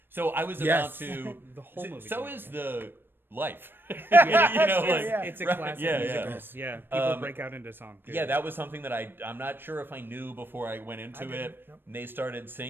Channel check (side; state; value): left; late; 0.098 ms